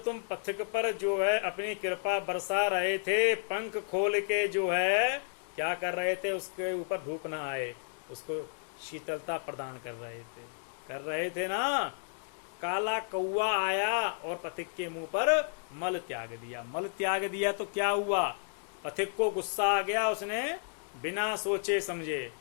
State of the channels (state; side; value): silent; right; digital silence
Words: तुम पथिक पर जो है अपनी कृपा बरसा रहे थे, पंख खोल के जो है क्या कर रहे थे, उसके ऊपर धूप ना आए, उसको शीतलता प्रदान कर रहे थे ना। काला कौवा आया और पथिक के मुंह पर मल त्याग दिया। मल त्याग दिया तो क्या हुआ, पथिक को गुस्सा आ गया, उसने बिना सोचे समझे